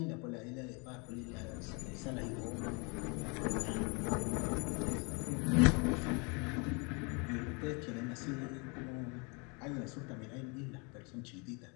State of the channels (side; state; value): right; quieter; 32.0 dB